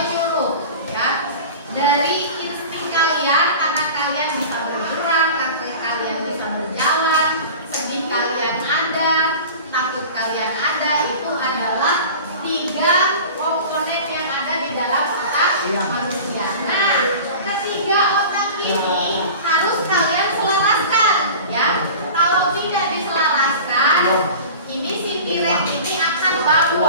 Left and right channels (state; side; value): inverted; both; correlation -0.37